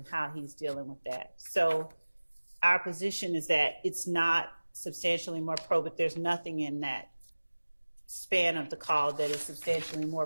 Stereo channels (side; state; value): both; inverted; correlation -1.00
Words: how he's dealing with that. So our position is that it's not substantially more probative. There's nothing in that span of the call that is substantially more